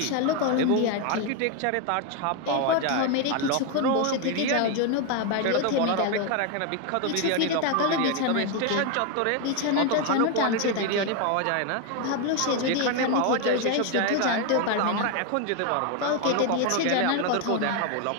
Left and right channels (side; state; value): both; different; correlation 0.01